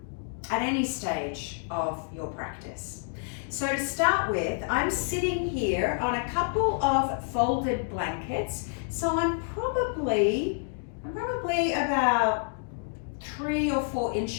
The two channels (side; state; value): right; silent; 59 dB below the other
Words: any stage of your practice. So to start with, I'm sitting here on a couple of folded blankets. So I'm probably about 3 or 4